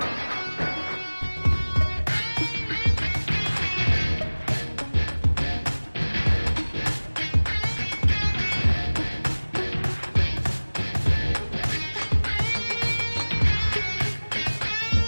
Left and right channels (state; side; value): inverted; both; correlation -1.00